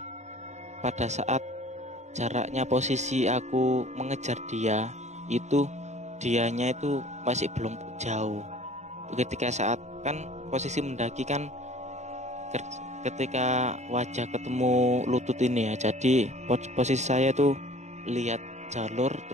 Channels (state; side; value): late; left; 0.33 ms